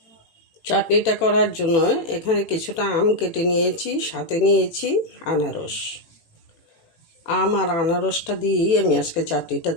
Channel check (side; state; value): right; late; 18 ms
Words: চাটনিটা করার জন্য এখানে কিছুটা আম কেটে নিয়েছি, সাথে নিয়েছি আনারস। আম আর আনারসটা দিয়েই আমি আজকে চাটনিটা